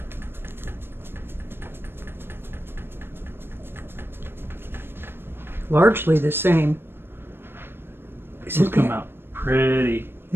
Largely the same. Isn't come out pretty.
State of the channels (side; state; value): left; late; 0.11 ms